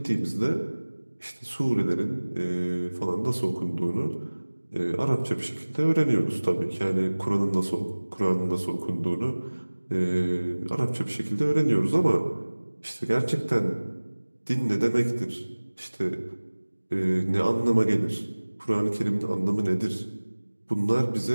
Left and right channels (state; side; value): inverted; both; correlation -1.00